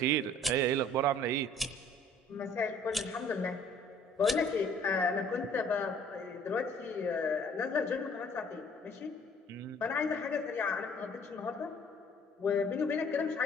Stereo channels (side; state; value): both; normal; correlation 0.55